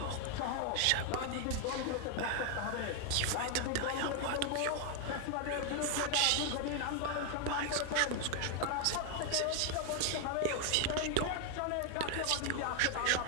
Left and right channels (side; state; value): both; different; correlation 0.00